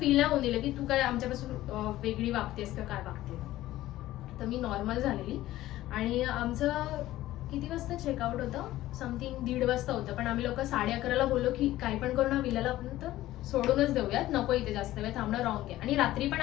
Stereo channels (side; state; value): right; quieter; 15.4 dB